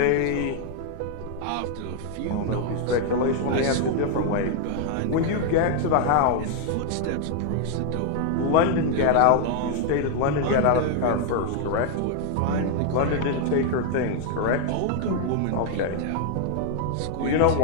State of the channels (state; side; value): different; both; correlation 0.00